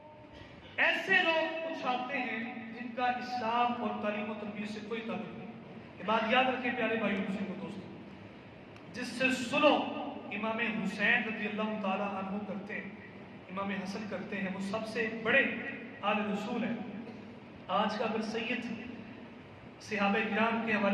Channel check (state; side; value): identical; both; correlation 1.00